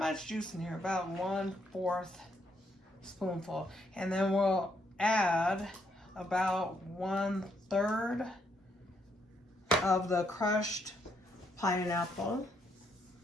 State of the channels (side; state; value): both; normal; correlation 0.74